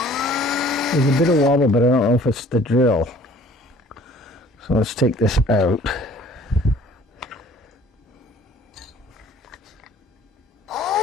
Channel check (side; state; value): both; normal; correlation 0.52